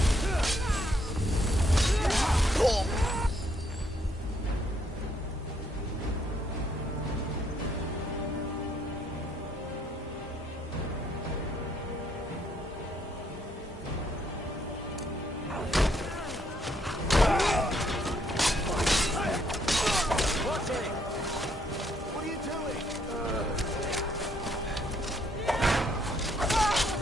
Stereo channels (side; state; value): both; normal; correlation 0.70